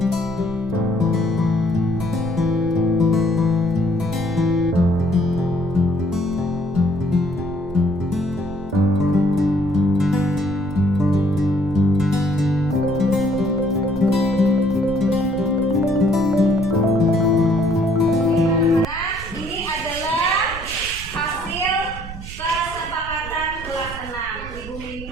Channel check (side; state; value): right; noise; rumble, 12 dB below the sound